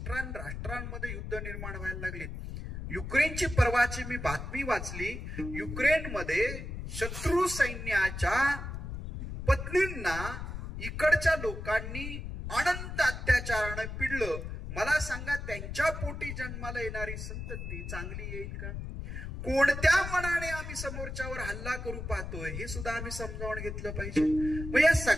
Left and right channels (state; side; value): noise; left; rumble, 7 dB below the sound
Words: युद्ध निर्माण व्हायला लागलीत. युक्रेनची परवाची मी बातमी वाचली. युक्रेनमध्ये शत्रू सैन्याच्या पत्नींना इकडच्या लोकांनी अनंत अत्याचाराने पिडलं. मला सांगा, त्यांच्या पोटी जन्माला येणारी संतती चांगली येईल का? कोणत्या मनाने आम्ही समोरच्यावर हल्ला करू पाहतोय हे सुद्धा आम्ही समजावून घेतलं पाहिजे. मग या